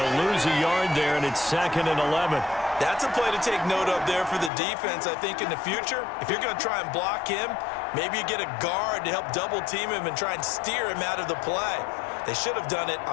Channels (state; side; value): drops out; right; at 4.5 s